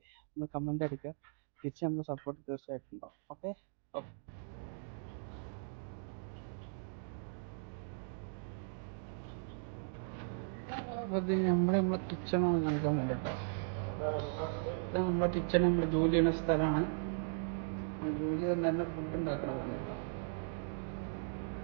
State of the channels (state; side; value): silent; left; digital silence